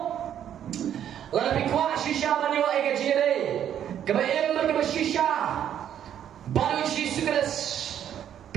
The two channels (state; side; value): quieter; left; 10.0 dB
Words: lalu kuasyo siapa ni wa ke jere kebayem ke shisha baru jisu keras